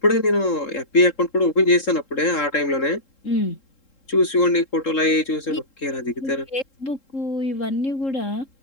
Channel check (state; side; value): late; right; 3.7 ms